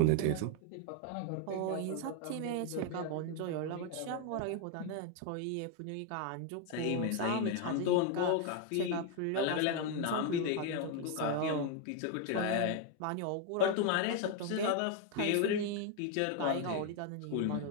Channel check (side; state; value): both; different; correlation 0.01